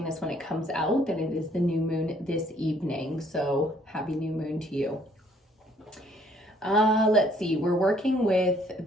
this when it comes out, then it is the new moon this evening. So happy new moon to you. Let's see, we're working with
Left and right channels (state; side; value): normal; both; correlation 0.63